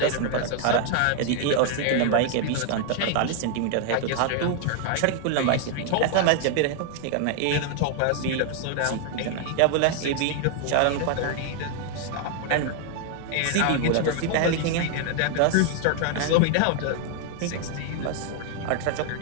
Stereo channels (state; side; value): different; both; correlation 0.00